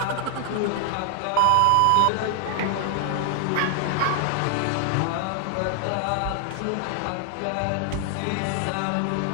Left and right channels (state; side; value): different; both; correlation 0.00